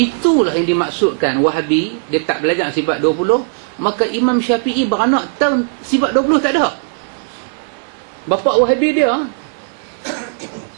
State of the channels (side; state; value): left; silent; digital silence